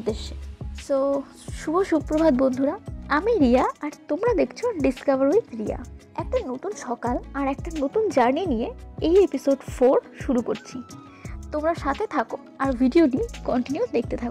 সো শুভ সুপ্রভাত বন্ধুরা, আমি রিয়া আর তোমরা দেখছো ডিসকভার উইথ রিয়া। একটা নতুন সকাল আর একটা নতুন জার্নি নিয়ে এই এপিসোড 4 শুরু করছি। তোমরা সাথে থাকো আর ভিডিওটি কন্টিনিউ দেখতে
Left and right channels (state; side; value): identical; both; correlation 1.00